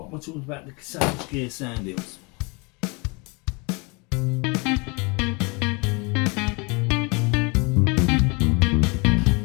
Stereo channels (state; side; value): quieter; right; 29.5 dB